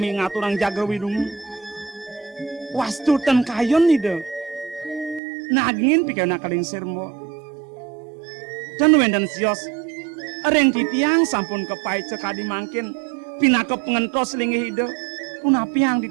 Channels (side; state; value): left; drops out; at 5.2 s